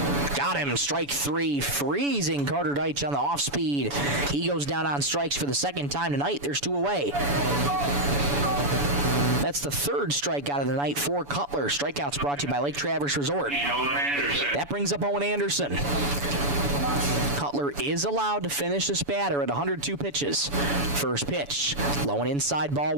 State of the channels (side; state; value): left; late; 7.0 ms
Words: Got him, strike 3, freezing Carter Deitch on the off speed. He goes down on strikes for the second time tonight. There's 2 away. That's the 3rd strikeout of the night for Cutler. Strikeouts brought to you by Lake Traverse Resort. That brings up Owen Anderson. Cutler is allowed to finish this batter at 102 pitches. First pitch, low and inside, ball